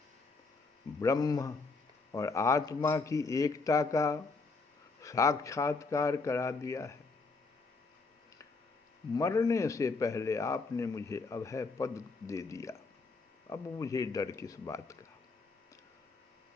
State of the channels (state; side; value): quieter; right; 4.0 dB